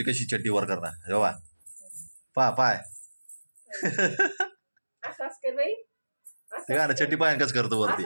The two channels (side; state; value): both; inverted; correlation -1.00